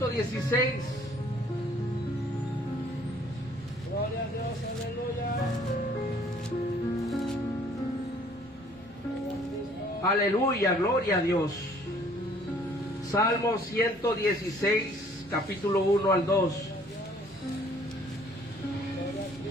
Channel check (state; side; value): noise; right; rumble, 25 dB below the sound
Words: Gloria a Dios, aleluya. Aleluya, gloria a Dios. Salmo 116, capítulo 1 al 2.